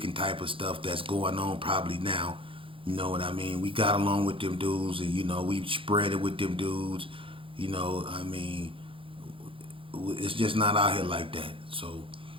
type of stuff that's going on probably now. You know what I mean? We got along with them dudes, and, you know, we spread it with them dudes. You know, I mean, it's just not out here like that. So,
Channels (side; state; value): left; late; 0.25 ms